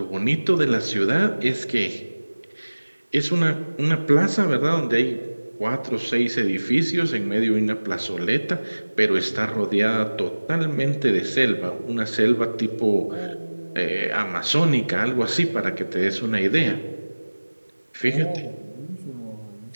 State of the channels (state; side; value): inverted; both; correlation -1.00